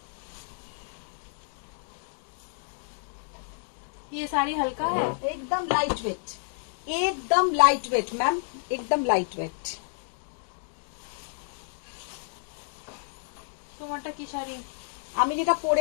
ये साड़ी हल्का है, एकदम लाइट वेट, एकदम लाइट वेट मैम, एकदम लाइट वेट। তোমারটা কি শাড়ি? আমি যেটা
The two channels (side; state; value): right; silent; digital silence